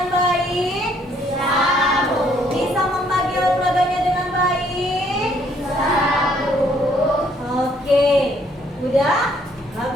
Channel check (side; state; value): both; normal; correlation 0.66